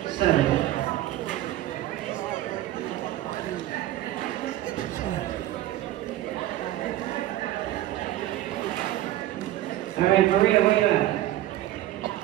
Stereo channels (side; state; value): left; quieter; 14.4 dB